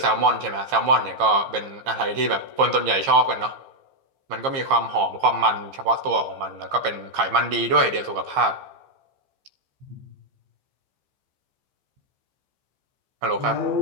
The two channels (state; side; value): late; left; 15 ms